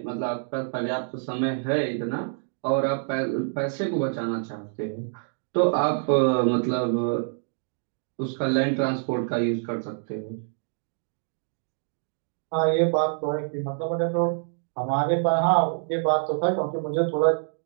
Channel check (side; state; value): left; silent; digital silence